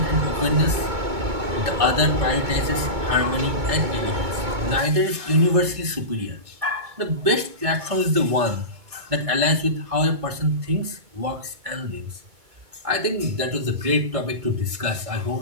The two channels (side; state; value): left; late; 2.2 ms